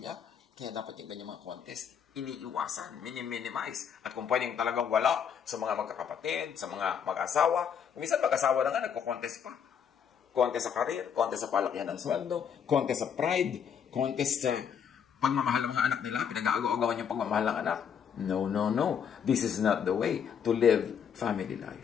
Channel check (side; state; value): right; quieter; 7.8 dB